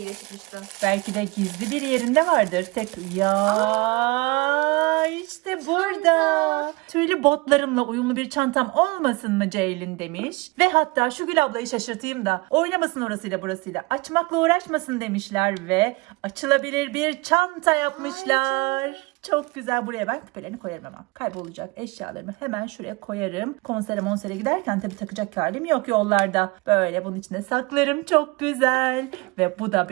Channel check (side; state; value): left; quieter; 24.8 dB